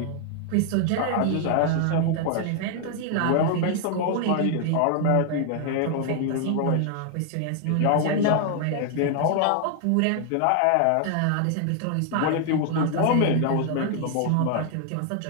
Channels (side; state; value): both; different; correlation 0.00